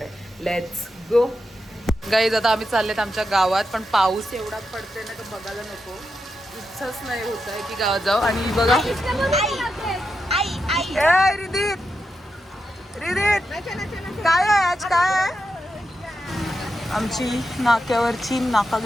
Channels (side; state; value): both; normal; correlation 0.87